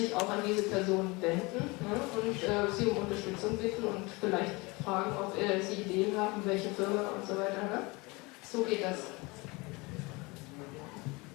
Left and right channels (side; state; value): right; quieter; 25.4 dB